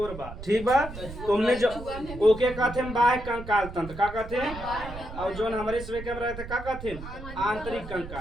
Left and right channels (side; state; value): right; noise; rumble, 11 dB below the sound